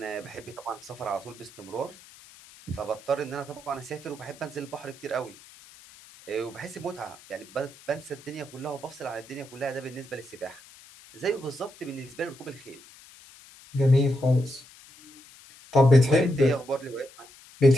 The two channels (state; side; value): noise; left; hiss, 22 dB below the sound